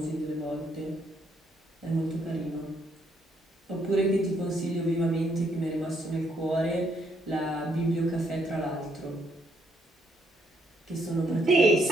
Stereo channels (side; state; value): both; normal; correlation 0.72